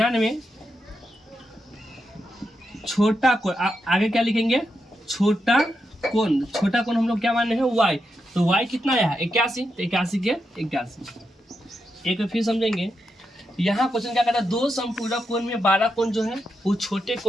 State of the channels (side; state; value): both; normal; correlation 0.85